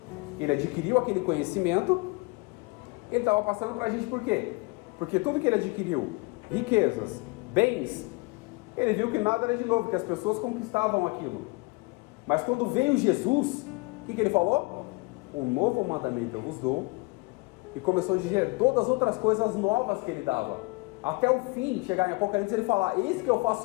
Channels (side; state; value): right; quieter; 27.0 dB